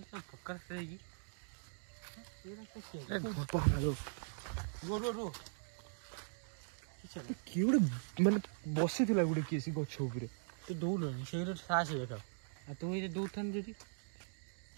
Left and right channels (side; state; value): left; silent; digital silence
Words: ପକ୍କା ରାସ୍ତା ହେଇକି ଏଇ ରାସ୍ତା କିଏ ଗୋଟେ ମାନେ ବସିଥିଲା ଗୋଟେ କିଏ ସେ ଗଛ ଉପରେ ତୁ ଦୌଡ଼ୁନି ସେଇଟା ସାହସ ଦେଖାଉ ଆଉ ତୁ ଏଇଟା ଦୌଡ଼ଥାନ୍ତୁ ଯଦି